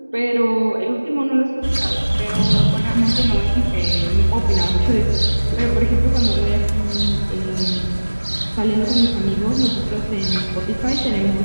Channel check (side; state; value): both; inverted; correlation -1.00